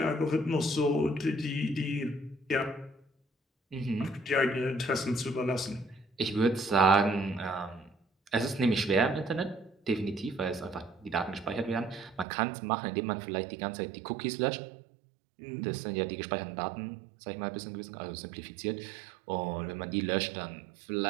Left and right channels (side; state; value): left; drops out; at 12.2 s